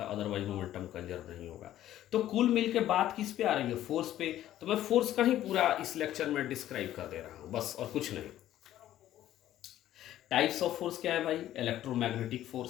है, अदरवाइज मोमेंटम कंजर्व नहीं होगा। तो कुल मिल के बात किस पे आ रही है, फोर्स पे। तो मैं फोर्स का ही पूरा इस लेक्चर में डिस्क्राइब कर दे रहा हूं, बस, और कुछ नहीं। टाइप्स ऑफ फोर्स क्या है भाई, इलेक्ट्रोमैग्नेटिक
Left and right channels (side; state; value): right; quieter; 12.9 dB